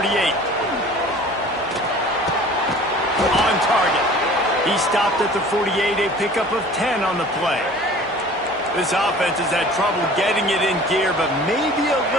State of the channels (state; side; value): normal; both; correlation 0.46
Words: On target. He stopped at the 48, a pickup of 10 on the play. This offense has had trouble getting it in gear, but maybe a